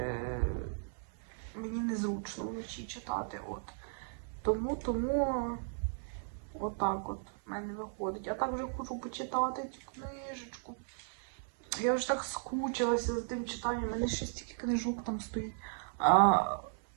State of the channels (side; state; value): left; silent; 54 dB below the other